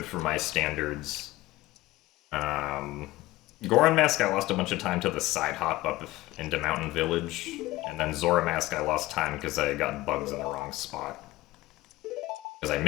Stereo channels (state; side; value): quieter; right; 18.3 dB